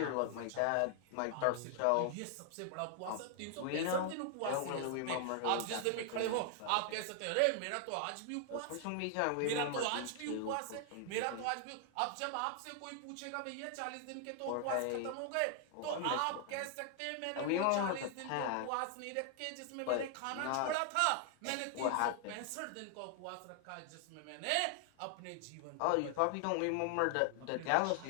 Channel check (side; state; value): both; different; correlation 0.00